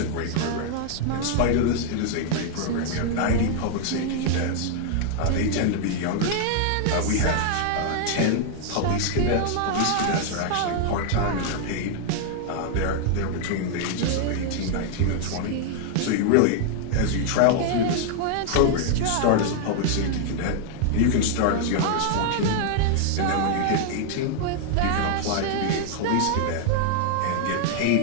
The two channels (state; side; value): different; both; correlation 0.00